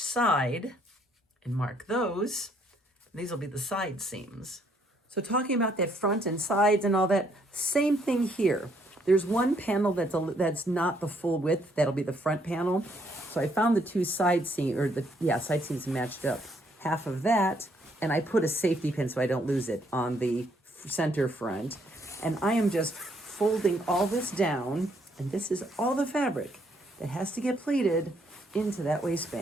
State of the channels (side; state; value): both; normal; correlation 0.69